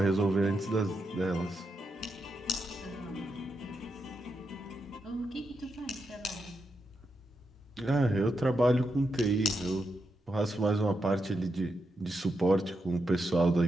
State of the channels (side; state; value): both; normal; correlation 0.85